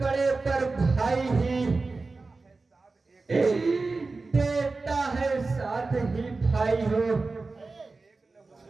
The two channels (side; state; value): left; quieter; 3.8 dB